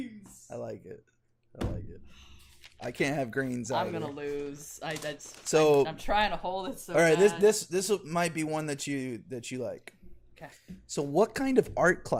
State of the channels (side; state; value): both; identical; correlation 1.00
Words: I like it. I can't have grains either. I'm gonna lose. I'm trying to hold it. So all right, bad. this might be one that you like. Okay. So, what kind of art